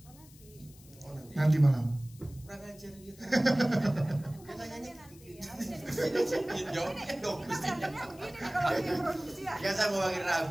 Oh nanti malam. Kurang ajar gitu. Katanya nanti ya. Jawabnya dong. Ya saya mau panggil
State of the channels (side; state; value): left; noise; hiss, 23 dB below the sound